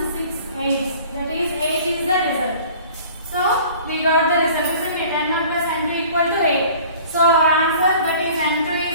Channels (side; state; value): both; inverted; correlation -0.47